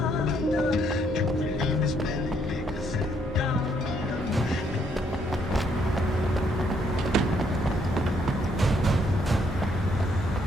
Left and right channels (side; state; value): both; normal; correlation 0.71